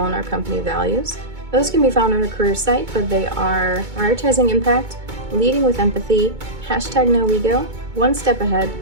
on our company values. Those can be found on our career site, but they are prioritizing impact, leading with empathy, #NoEgo, one step ahead,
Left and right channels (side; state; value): left; late; 2.2 ms